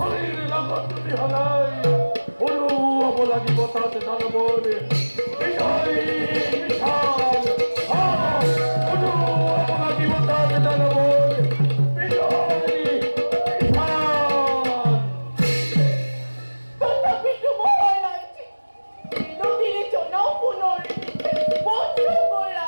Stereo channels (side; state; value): both; inverted; correlation -1.00